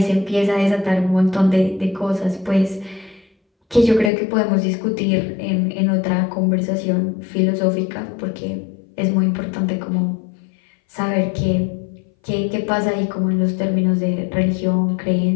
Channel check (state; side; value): drops out; right; at 4.1 s